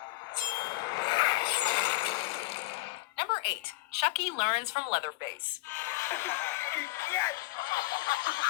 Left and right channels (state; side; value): quieter; right; 20.3 dB